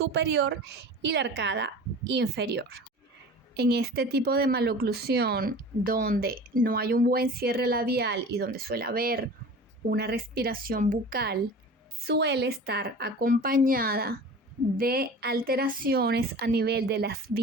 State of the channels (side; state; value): both; normal; correlation 0.38